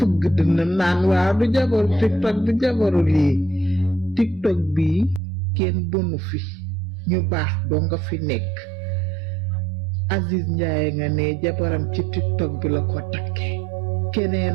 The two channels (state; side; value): drops out; left; at 5.2 s